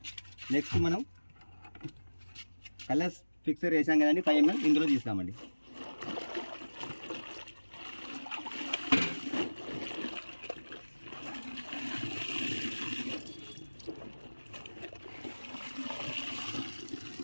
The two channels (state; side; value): inverted; both; correlation -1.00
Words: నెక్స్ట్ మనం కలర్స్ ఫిక్సర్ వేసాం కదండి, 5 ml ఇందులో తీస్తామండి.